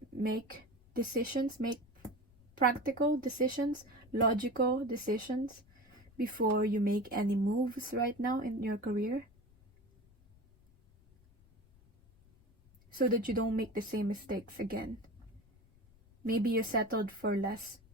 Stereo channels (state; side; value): noise; left; rumble, 28 dB below the sound